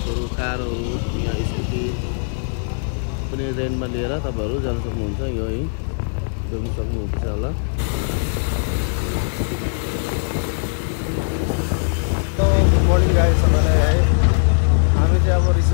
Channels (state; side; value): silent; right; 65 dB below the other